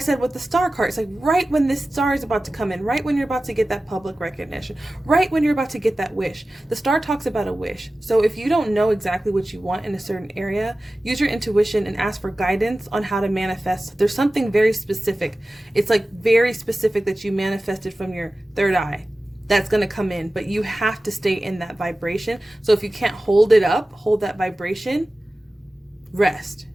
with the star card, it's like right when this star is about to come in, right when you're about to get that public recognition, right when you're about to get that wish. The star talks about a wish. So if you don't know exactly what you want in a certain area, use your intuition and ask for guidance on how to manifest. There's something very specific. It's like very specific that you manifested from your third eye that's going to come in, but you have to stay in that vibration. So if you can't hold it up, hold that vibration, rest.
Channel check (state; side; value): normal; both; correlation 0.96